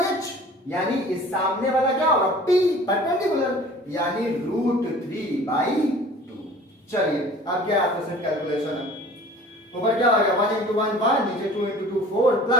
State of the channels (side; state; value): both; normal; correlation 0.46